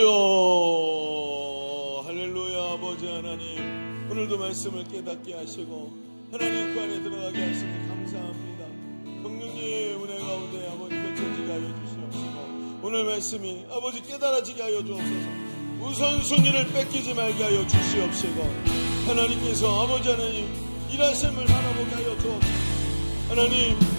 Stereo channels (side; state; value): both; inverted; correlation -1.00